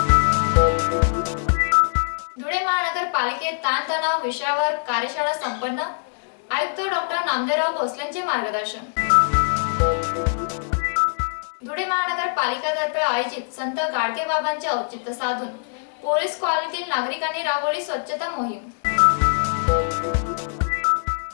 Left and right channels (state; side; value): silent; right; digital silence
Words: धुळे महानगरपालिकेत ताणतणाव विषयावर कार्यशाळा संपन्न। आयुक्त डॉक्टर नामदेवराव भोसलेंचे मार्गदर्शन। धुळे महानगरपालिकेतर्फे आयोजित संत गाडगे बाबांचे औचित्य साधून पोलीस कॉलनीतील नागरिकांनी राबवली स्वच्छता मोहीम।